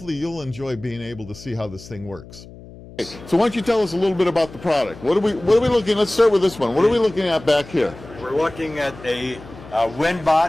you'll enjoy being able to see how this thing works. So why don't you tell us a little bit about the product? What are we looking? Let's start with this one. What are we looking at back here? We're looking at a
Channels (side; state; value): left; noise; hum, 18 dB below the sound